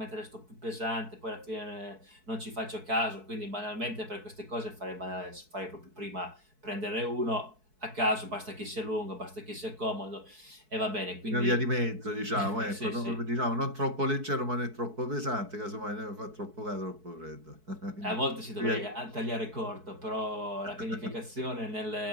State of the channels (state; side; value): late; left; 4.6 ms